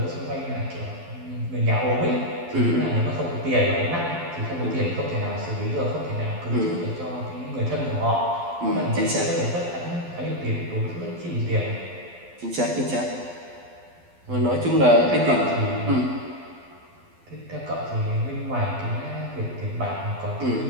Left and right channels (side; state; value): left; late; 12 ms